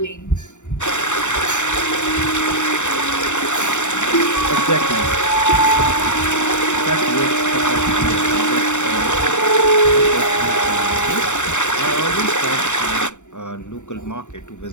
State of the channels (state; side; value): late; right; 0.84 ms